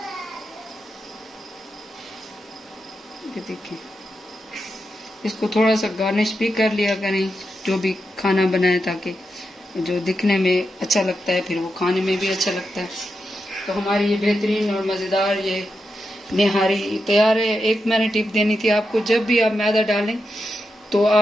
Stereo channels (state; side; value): normal; both; correlation 0.87